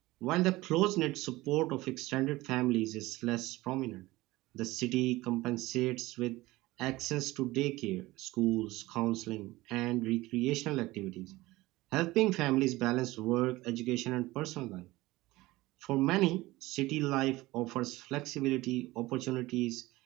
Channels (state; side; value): quieter; left; 19.2 dB